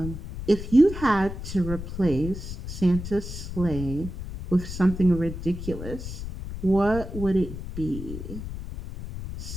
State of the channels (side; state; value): left; noise; rumble, 8 dB below the sound